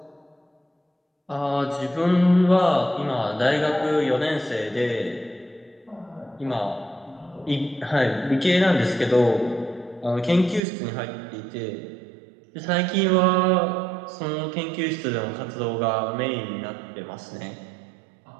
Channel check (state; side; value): drops out; left; at 10.6 s